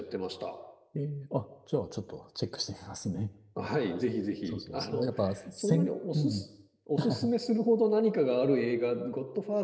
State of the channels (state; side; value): identical; both; correlation 1.00